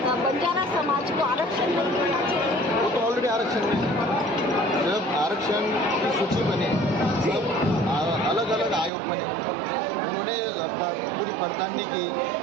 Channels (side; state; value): left; drops out; at 8.9 s